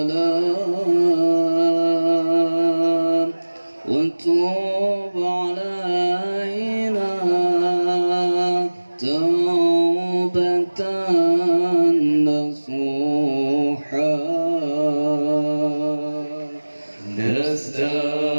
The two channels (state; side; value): inverted; both; correlation -1.00